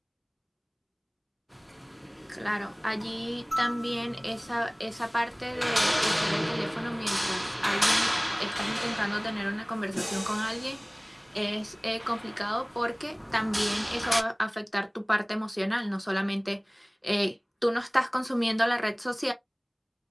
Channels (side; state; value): both; identical; correlation 1.00